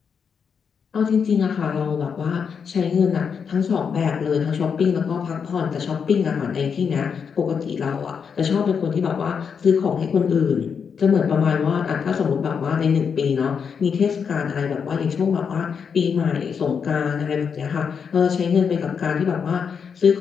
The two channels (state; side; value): quieter; right; 6.5 dB